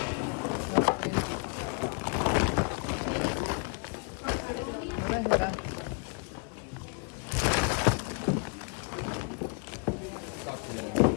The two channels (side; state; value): right; quieter; 37.9 dB